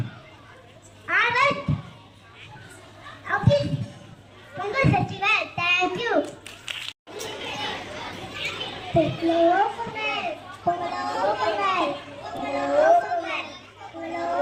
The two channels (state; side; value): identical; both; correlation 1.00